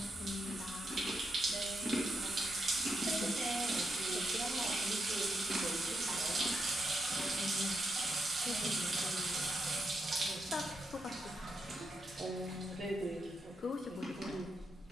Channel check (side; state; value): both; normal; correlation 0.83